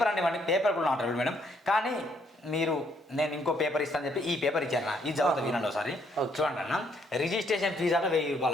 అండి ఇవ్వండి. పేపర్ కూడా నాట్ అలౌడ్ మేడం, కానీ నేను ఇంకో పేపర్ ఇస్తాను చెప్పి ఈ పేపర్ ఇచ్చాను. ఈ చదువుతా వినండి ఒకసారి. చూడండి అన్న, రిజిస్ట్రేషన్ ఫీజు అట 1,000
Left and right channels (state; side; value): normal; both; correlation 0.70